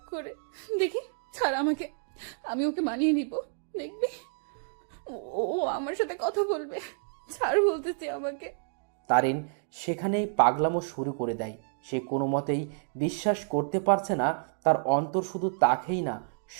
করে। দেখি, ছাড় আমাকে, আমি ওকে মানিয়ে নিব। দেখবি ও ও আমার সাথে কথা বলবে। ছাড় বলতেছি আমাকে। তারিন সেখানেই পাগলামো শুরু করে দেয়। সে কোনো মতেই বিশ্বাস করতে পারছে না তার অন্তর শুধু তাকেই না,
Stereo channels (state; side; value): silent; left; digital silence